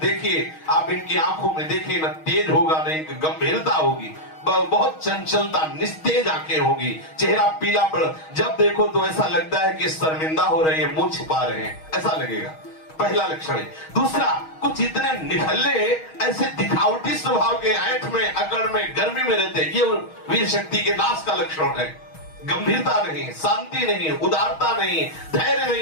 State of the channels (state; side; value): late; right; 6.3 ms